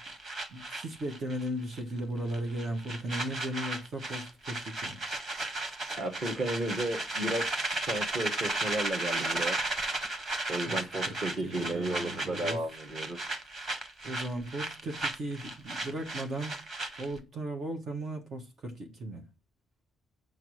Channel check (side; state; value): both; normal; correlation 0.72